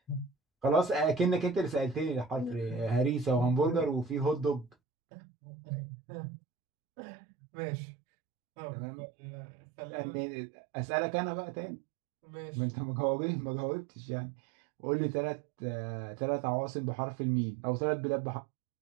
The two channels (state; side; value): drops out; left; at 4.8 s